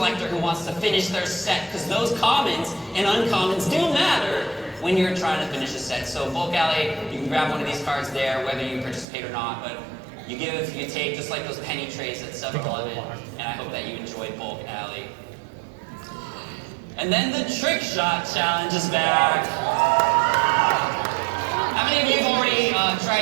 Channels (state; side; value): drops out; left; at 9.1 s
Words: who wants to finish their set, because those commons and uncommons do matter when you're trying to finish a set. So bulk alley, you can grab one of these cards there, whether you participate or not, but you give, you take, just like those penny trays at 7-Eleven, and I hope that you enjoyed bulk alley. And then the trick shot challenge is back. How many of you have already